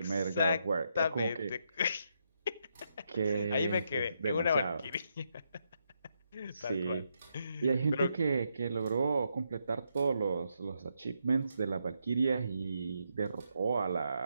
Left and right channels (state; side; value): inverted; both; correlation -0.80